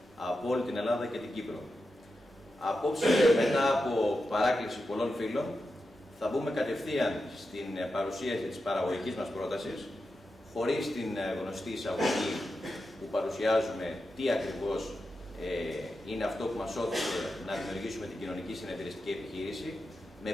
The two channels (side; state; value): both; normal; correlation 0.89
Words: από όλη την Ελλάδα και την Κύπρο. Απόψε, μετά από παράκληση πολλών φίλων, θα μπούμε κατευθείαν στην παρουσίαση της παραγωγικής μας πρότασης, χωρίς την γνωστή εισαγωγή που παρουσιάζουμε τι ακριβώς είναι αυτό που μας όθησε να δημιουργήσουμε την κοινωνική συνεταιριστική επιχείρηση, με